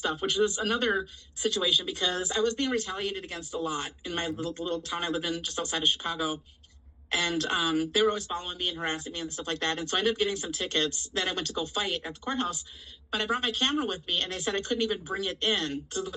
which is another situation, because I was being retaliated against a lot in my little town I lived in just outside of Chicago. And they were always following me and harassing me and stuff like that. And so I ended up getting some tickets that I went to go fight at the courthouse. But I brought my camera with me, and they said I couldn't even bring it in to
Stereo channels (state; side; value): identical; both; correlation 1.00